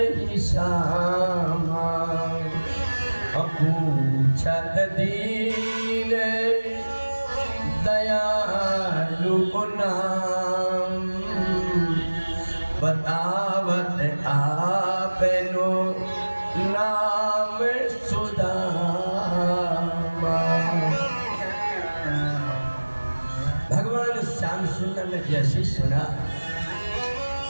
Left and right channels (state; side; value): inverted; both; correlation -1.00